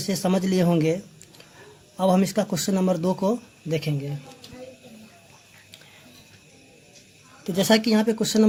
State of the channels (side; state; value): both; identical; correlation 1.00